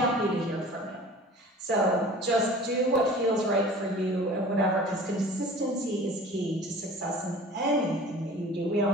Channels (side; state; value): both; normal; correlation 0.43